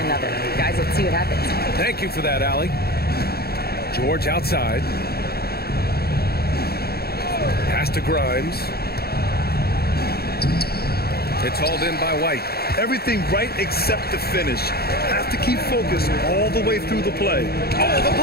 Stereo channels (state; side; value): late; right; 0.46 ms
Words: Guys, let's see what happens. Thank you for that, Allie. George outside. Pass to Grimes. It's hauled in by White. Everything right except the finish. Have to keep focused all the way through the play. Oh, the